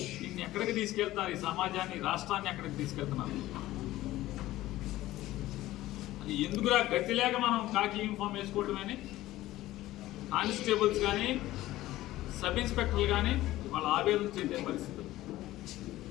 దీన్ని ఎక్కడికి తీసుకెళ్తున్నారు? ఈ సమాజాన్ని, రాష్ట్రాన్ని ఎక్కడికి తీసుకెళ్తున్నారు? అది ఎందుకురా గతి లేక మనం కాకి యూనిఫామ్ వేసుకోవటమని కానిస్టేబుల్స్ కానీ సబ్ ఇన్స్పెక్టర్లు కానీ వాళ్ళ ఆవేదన చెందే పరిస్థితి.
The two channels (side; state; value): right; quieter; 16.0 dB